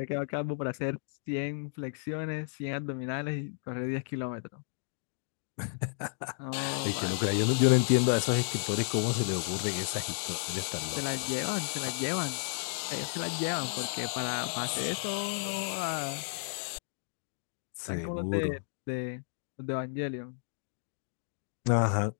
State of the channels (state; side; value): silent; right; digital silence